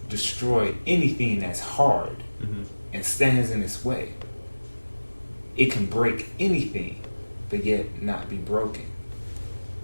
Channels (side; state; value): both; inverted; correlation -1.00